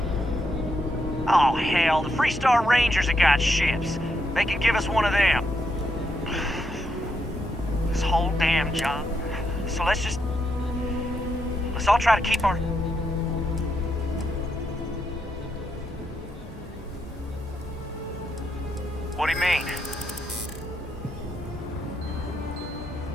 Oh, hell, the Freestar Rangers have got ships. They can give us one of them. This whole damn job. So let's all try to keep our... What do you mean?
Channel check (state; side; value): normal; both; correlation 0.80